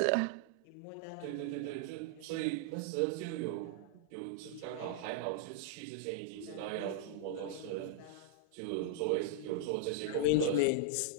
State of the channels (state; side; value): different; both; correlation -0.01